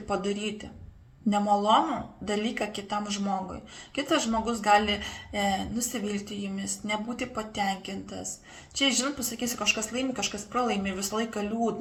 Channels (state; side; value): identical; both; correlation 1.00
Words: ir padaryti. Nemalonų dalyką kitam žmogui. Kitas žmogus gali nusivilti jumis, nebūti patenkintas. Čia, žinot, pasakysiu, kažkas laimi, kažkas pralaimi, visą laiką